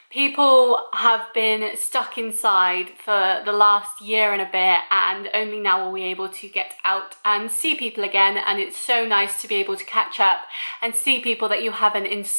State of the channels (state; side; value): inverted; both; correlation -1.00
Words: People have been stuck inside for the last year and a bit, and only now are we able to get out and see people again, and it's so nice to be able to catch up and see people that you haven't in